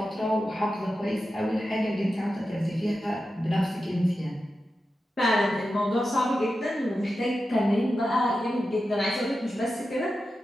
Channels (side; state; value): both; normal; correlation 0.91